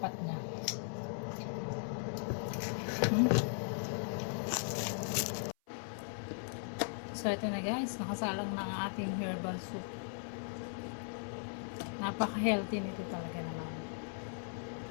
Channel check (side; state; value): right; silent; 52 dB below the other